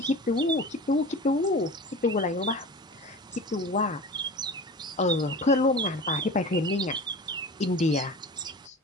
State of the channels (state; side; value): normal; both; correlation 0.35